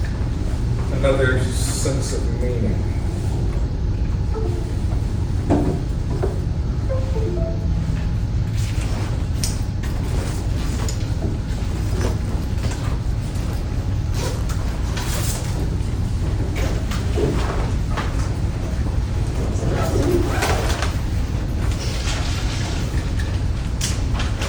another sense of meaning.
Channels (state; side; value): identical; both; correlation 1.00